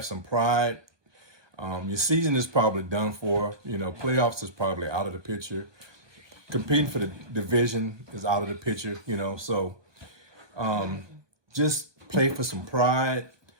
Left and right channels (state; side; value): late; left; 1.2 ms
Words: some pride. Your season is probably done for. You know, playoffs is probably out of the picture. Competing for the division is out of the picture, you know. So just play for some pride